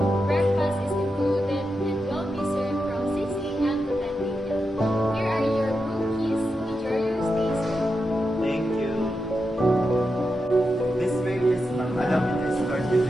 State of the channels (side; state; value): both; normal; correlation 0.88